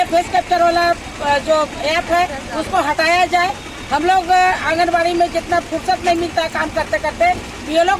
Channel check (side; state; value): both; identical; correlation 1.00